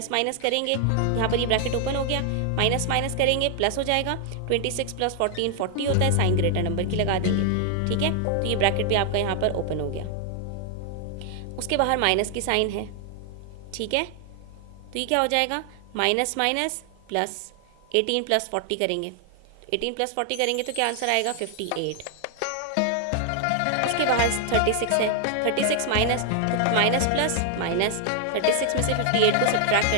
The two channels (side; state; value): both; different; correlation 0.00